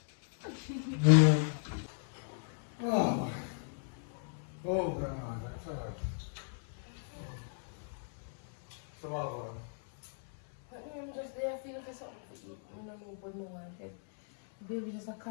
Oh, oh God, that's hard. So what on? I'm just there feeling for something to eat. I don't know what no one said. Baby just a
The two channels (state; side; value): silent; right; 54 dB below the other